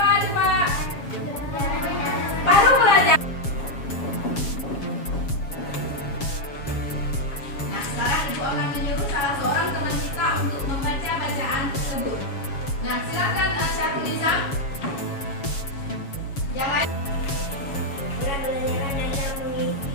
coba? Baru belajar. Nah, sekarang ibu akan menyuruh salah seorang teman kita untuk membaca bacaan tersebut. Nah, silakan Syarul Nizam. Yang lain. Pembelajaran adalah mengisi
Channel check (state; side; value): late; right; 7.2 ms